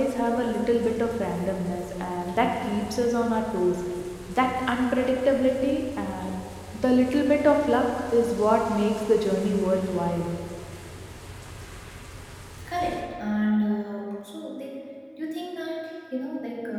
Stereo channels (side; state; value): both; identical; correlation 1.00